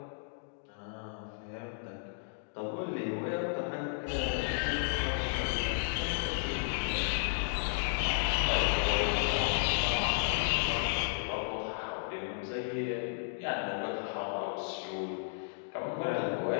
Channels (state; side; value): silent; right; digital silence